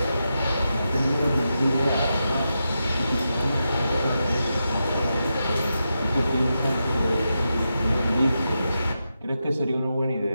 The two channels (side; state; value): both; inverted; correlation -0.88